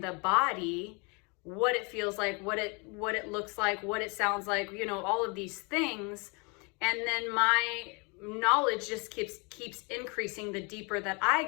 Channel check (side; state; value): right; quieter; 31.5 dB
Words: the body, what it feels like, what it looks like, what it sounds like, you know, all of these things. And then my knowledge just keeps increasing the deeper that I